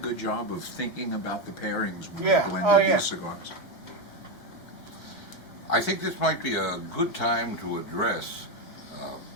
job of thinking about the pairings when Yeah. they Oh, blended yeah. these cigars. I think this might be a good time to address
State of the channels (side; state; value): right; late; 5.0 ms